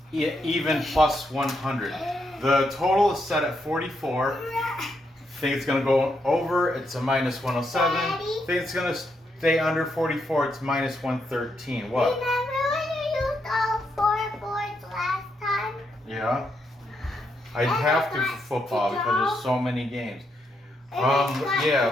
even plus 100. The total is set at 44. Think it's going to go over, it's a minus 107. Daddy? Think it's going to stay under 44, it's minus 113. What? Remember when you used all 4 boards last time? Yeah. I'd have to for football because there's so many games.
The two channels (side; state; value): both; normal; correlation 0.80